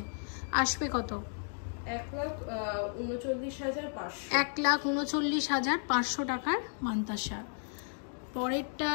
আসবে কত? 1,39,500 টাকার মান্তাসা।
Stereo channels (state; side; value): silent; right; 55 dB below the other